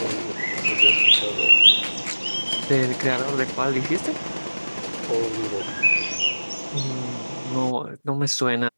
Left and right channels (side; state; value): both; inverted; correlation -1.00